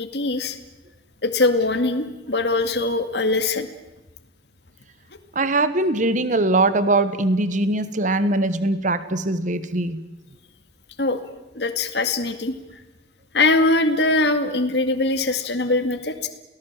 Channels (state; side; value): normal; both; correlation 0.15